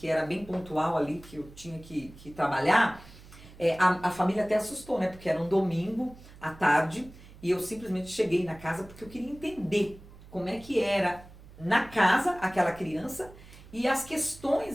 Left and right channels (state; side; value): noise; right; hum, 20 dB below the sound